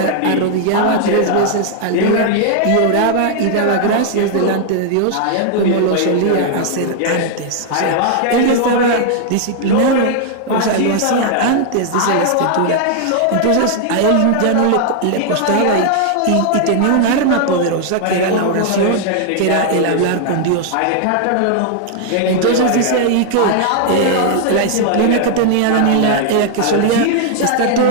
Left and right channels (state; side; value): different; both; correlation 0.00